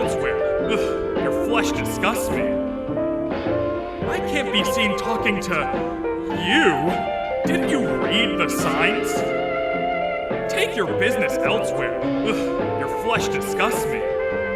Ugh, your flesh disgusts me. I can't be seen talking to you. Didn't you read the signs? Take your business elsewhere. Ugh, your flesh disgusts me.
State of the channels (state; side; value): identical; both; correlation 1.00